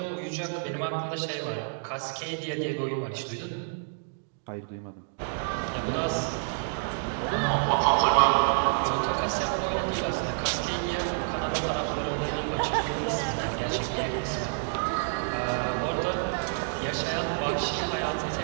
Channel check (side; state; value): left; silent; digital silence